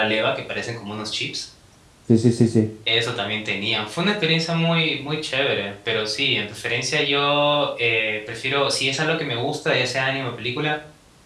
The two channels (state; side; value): identical; both; correlation 1.00